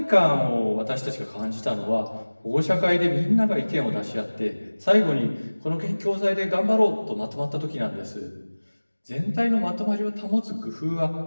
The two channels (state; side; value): inverted; both; correlation -1.00